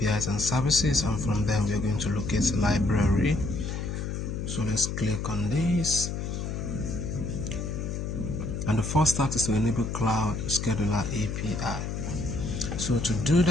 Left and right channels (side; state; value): left; noise; hum, 3 dB below the sound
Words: and services, and from them we are going to locate library. So let's click on this. And the first step is to enable Cloud Scheduler API. So to do